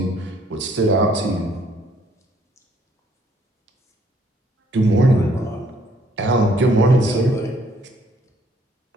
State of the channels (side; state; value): both; normal; correlation 0.65